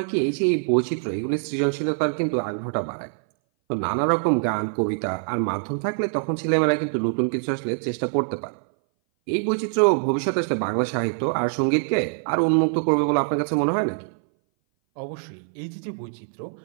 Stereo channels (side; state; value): left; silent; 59 dB below the other